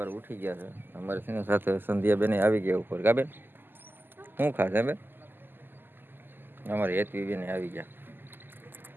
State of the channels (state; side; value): late; left; 0.095 ms